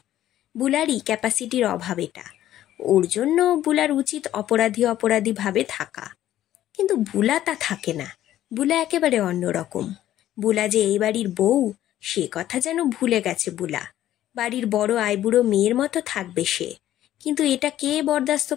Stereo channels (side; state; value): right; quieter; 12.9 dB